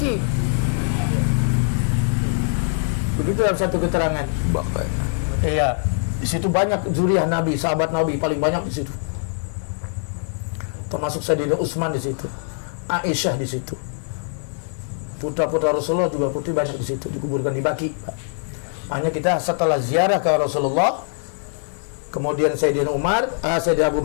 Begitu dalam satu keterangan. Iya, di situ banyak zuriyah Nabi, sahabat Nabi paling banyak di situ. Termasuk Sayyidina Utsman di situ, Aisyah di situ. Putra-putra Rasulullah juga putri banyak di situ, dikuburkan di Baki. Makanya kita setelah ziarah ke Rasulullah, kemudian Sayyidina Umar, Sayyidina Abu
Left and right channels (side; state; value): right; silent; digital silence